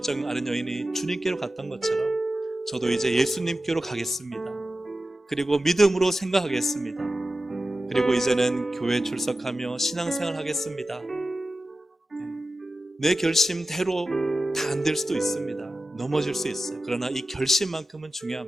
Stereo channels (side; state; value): both; normal; correlation 0.94